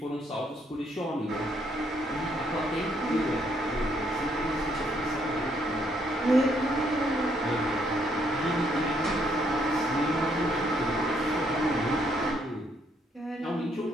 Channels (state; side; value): normal; both; correlation 0.71